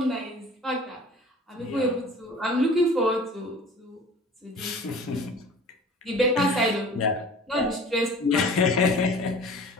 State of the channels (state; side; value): normal; both; correlation 0.44